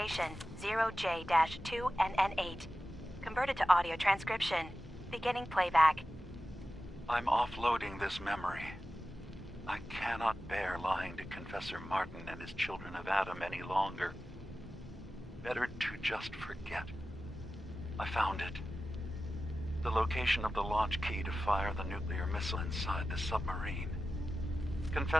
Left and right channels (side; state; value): both; normal; correlation 0.94